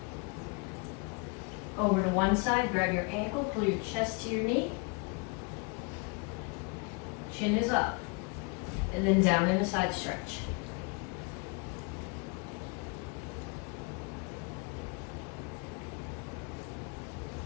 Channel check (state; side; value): quieter; right; 31.6 dB